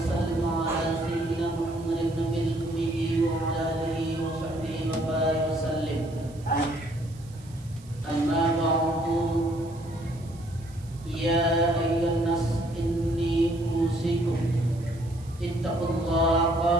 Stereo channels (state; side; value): noise; right; hiss, 25 dB below the sound